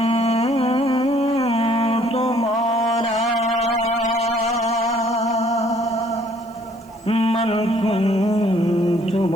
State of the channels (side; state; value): right; noise; hiss, 30 dB below the sound